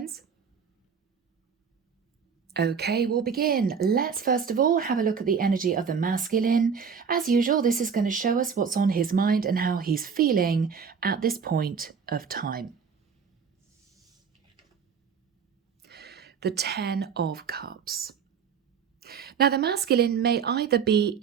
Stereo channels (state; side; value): quieter; left; 6.4 dB